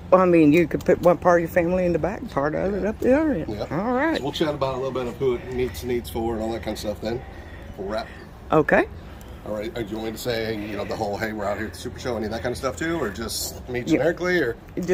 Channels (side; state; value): both; identical; correlation 1.00